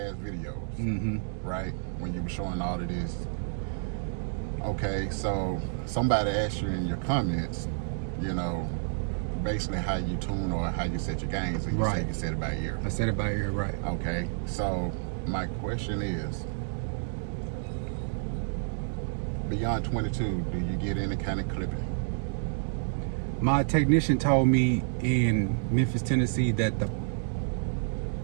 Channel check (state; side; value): silent; left; digital silence